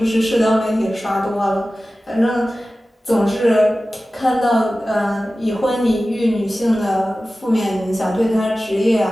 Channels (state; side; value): normal; both; correlation 0.96